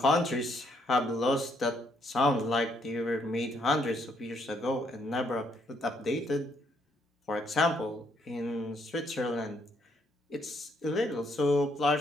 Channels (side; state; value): both; normal; correlation 0.71